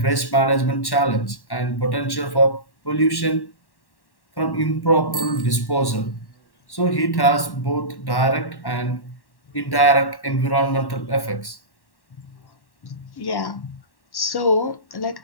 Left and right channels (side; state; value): right; late; 1.1 ms